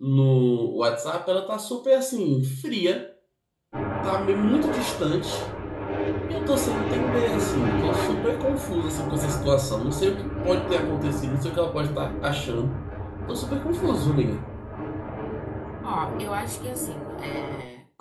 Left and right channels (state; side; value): identical; both; correlation 1.00